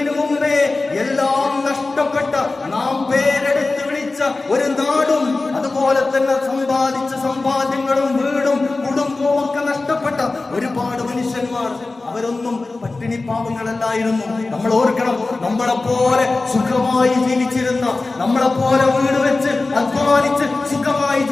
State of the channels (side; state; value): right; quieter; 3.4 dB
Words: മുമ്പേ എല്ലാം നഷ്ടപ്പെട്ട, നാം പേരെടുത്ത് വിളിച്ച ഒരു നാടും അതുപോലെ തന്നെ സമ്പാദിച്ച സമ്പാദ്യങ്ങളും വീടും കുടുംബവും ഒക്കെ നഷ്ടപ്പെട്ട ഒരുപാട് മനുഷ്യന്മാർ, അവരൊന്നും പട്ടിണി പാവങ്ങളല്ലായിരുന്നു. നമ്മൾ ഓർക്കണം, നമ്മളെപ്പോലെ സുഖമായി ജീവിച്ചിരുന്ന, നമ്മളെപ്പോലെ വീട് വെച്ച് അധ്വാനിച്ച് സുഖമായി